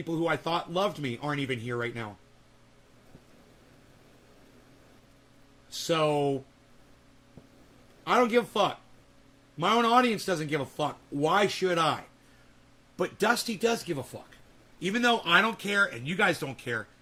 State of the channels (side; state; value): both; identical; correlation 1.00